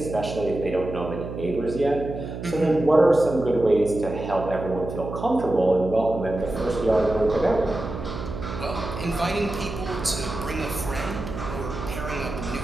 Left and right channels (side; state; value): right; noise; hum, 8 dB below the sound